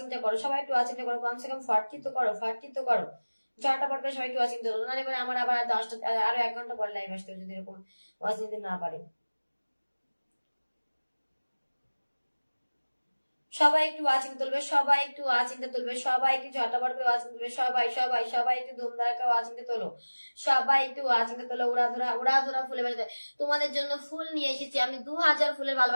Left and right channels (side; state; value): both; inverted; correlation -1.00